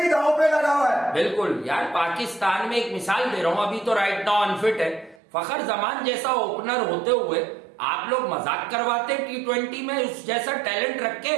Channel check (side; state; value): left; drops out; at 5.2 s